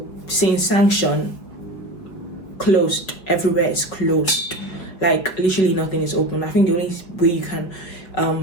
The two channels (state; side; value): late; right; 5.5 ms